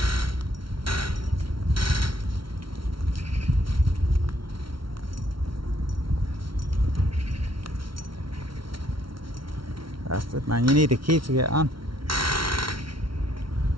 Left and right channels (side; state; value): left; late; 0.74 ms